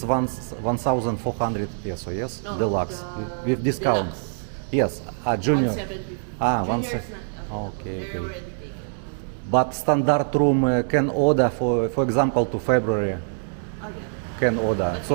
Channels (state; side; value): silent; left; 62 dB below the other